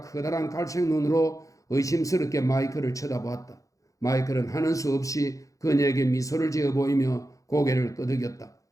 커다란 갈색 눈으로 의심스럽게 마이클을 쳐다보았다. 마이클은 하는 수 없이 그녀에게 미소를 지어 보이며 고개를 끄덕였다.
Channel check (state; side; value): late; right; 0.16 ms